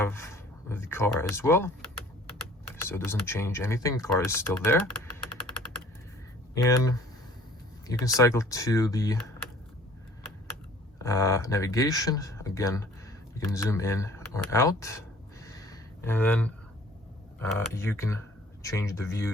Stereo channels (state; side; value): normal; both; correlation 0.52